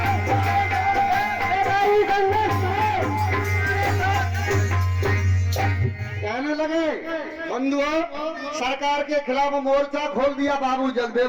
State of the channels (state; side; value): identical; both; correlation 1.00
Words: कहने लगे बंधुओं, सरकार के खिलाफ मोर्चा खोल दिया बाबू